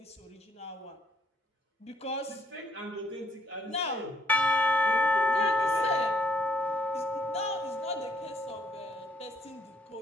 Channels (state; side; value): normal; both; correlation 0.68